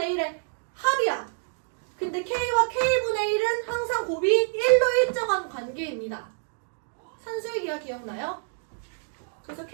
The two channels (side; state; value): left; silent; digital silence